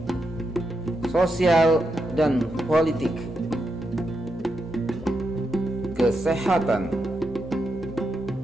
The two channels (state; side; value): normal; both; correlation 0.84